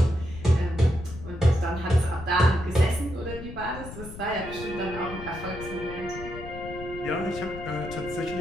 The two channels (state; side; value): noise; left; rumble, 12 dB below the sound